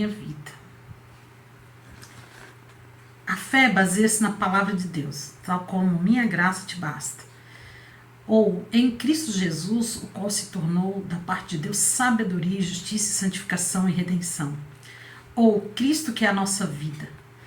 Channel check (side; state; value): both; identical; correlation 1.00